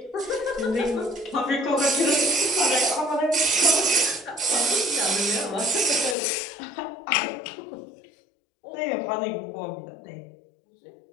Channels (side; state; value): right; drops out; at 6.2 s